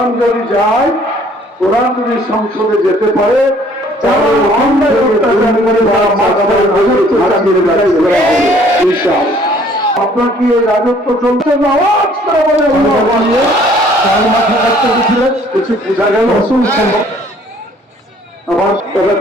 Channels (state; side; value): normal; both; correlation 0.58